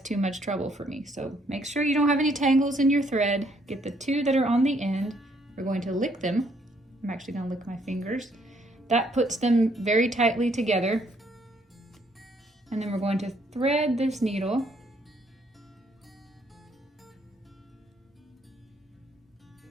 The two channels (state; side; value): normal; both; correlation 0.68